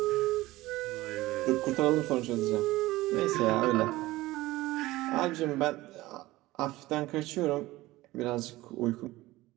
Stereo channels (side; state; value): left; quieter; 18.2 dB